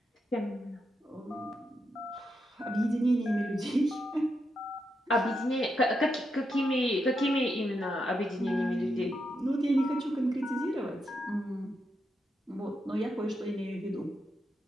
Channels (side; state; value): both; normal; correlation 0.83